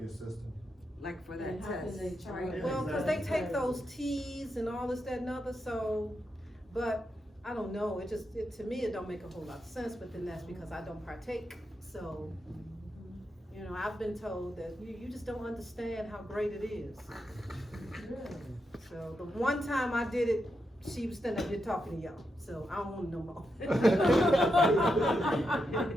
your system? Like for that And how can test, they charge? right? Well, cause they take those T's and all this, that, and other, so, but, I don't know, to me, it don't make a whole lot of sense, but then that's because I don't partake, so, you know, I've been told that you just don't understand how great it is. So, the one time I did it, she was standing up here talking to y'all, so I don't want no more.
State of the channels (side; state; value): both; normal; correlation 0.85